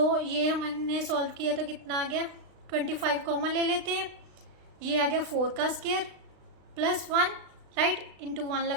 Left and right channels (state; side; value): late; left; 36 ms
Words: ये हमने सॉल्व किया तो कितना आ गया, 25 कॉमन ले लेते हैं, ये आ गया 4 का स्क्वायर प्लस 1, राइट, इंटू 1